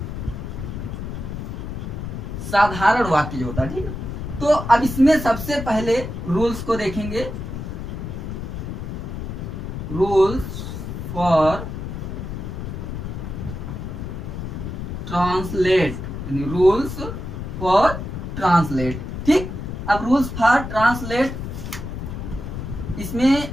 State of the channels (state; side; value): noise; left; rumble, 6 dB below the sound